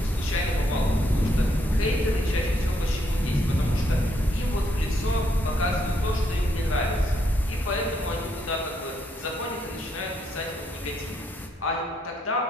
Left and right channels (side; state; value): both; normal; correlation 0.75